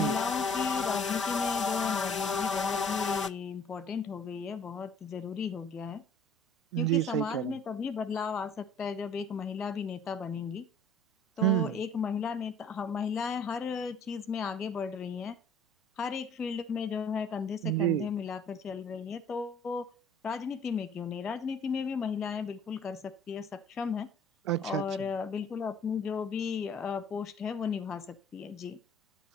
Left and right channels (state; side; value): normal; both; correlation 0.54